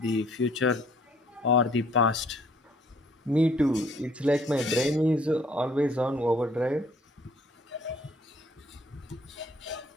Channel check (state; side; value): normal; both; correlation 0.60